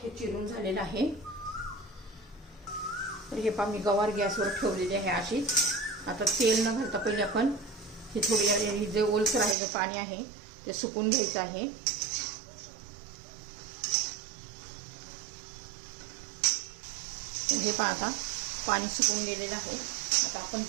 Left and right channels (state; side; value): drops out; left; at 9.6 s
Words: हे चिरून झालेलं आहे. तर हे पहा, मी गवार गॅसवर ठेवलेली आहे अशीच. आता तेल न घालता पहिले आपण हे थोडी जे ओलसर आहे, जे पाणी आहे ते सुकून घ्यायचं आहे. हे पहा, आता पाणी सुकून गेलेलं आहे. आता आपण